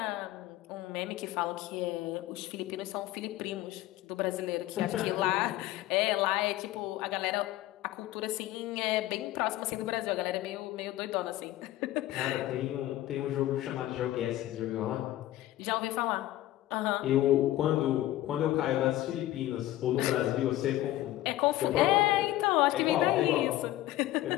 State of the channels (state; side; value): quieter; right; 15.1 dB